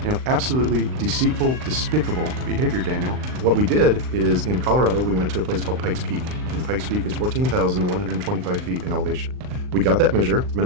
Absolutely deceitful, despicable behavior, Daniel. What we did is, in Colorado, we went to a place called Pikes Peak, and Pikes Peak is 14,125 feet in elevation. We got that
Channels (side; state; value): left; late; 39 ms